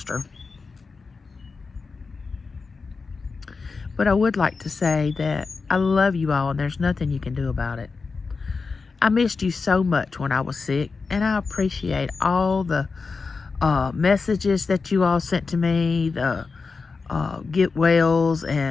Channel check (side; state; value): right; quieter; 4.5 dB